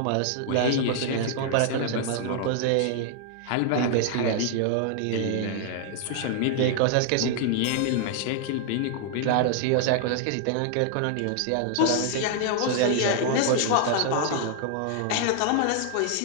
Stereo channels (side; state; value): both; different; correlation -0.01